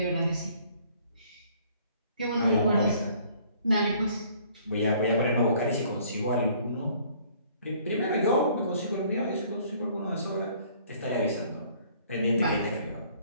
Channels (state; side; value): inverted; both; correlation -0.59